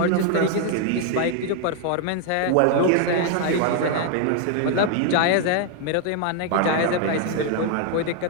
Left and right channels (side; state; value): both; different; correlation 0.00